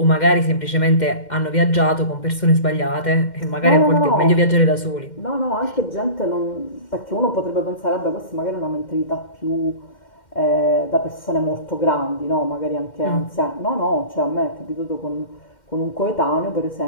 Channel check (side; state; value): right; late; 2.1 ms